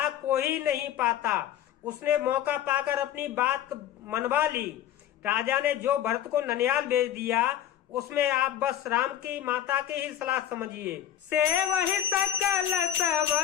कोई नहीं पाता। उसने मौका पाकर अपनी बात मनवा ली। राजा ने जो भरत को ननिहाल भेज दिया, उसमें आप बस राम की माता की ही सलाह समझिए। से वही सकल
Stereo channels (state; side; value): quieter; right; 11.0 dB